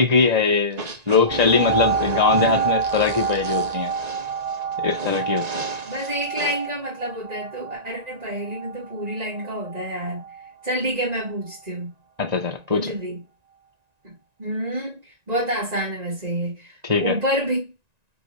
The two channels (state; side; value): late; left; 1.9 ms